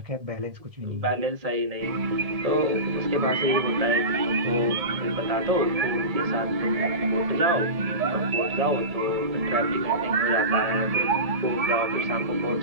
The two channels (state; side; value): late; left; 1.7 ms